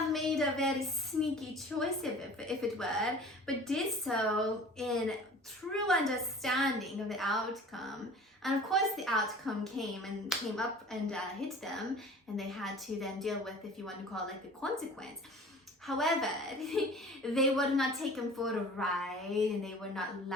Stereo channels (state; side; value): normal; both; correlation 0.44